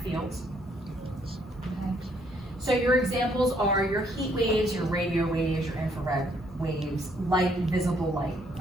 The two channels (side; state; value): both; normal; correlation 0.68